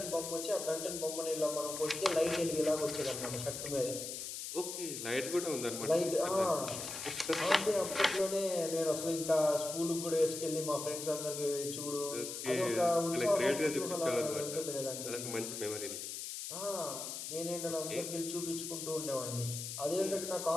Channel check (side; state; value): left; noise; hiss, 6 dB below the sound